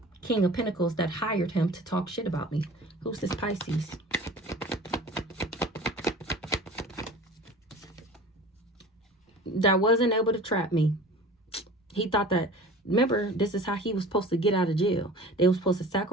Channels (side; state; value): both; normal; correlation 0.41